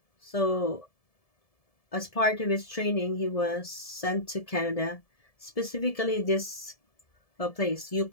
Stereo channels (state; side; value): late; right; 1.7 ms